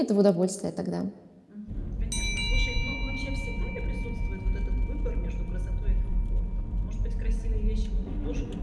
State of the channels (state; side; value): identical; both; correlation 1.00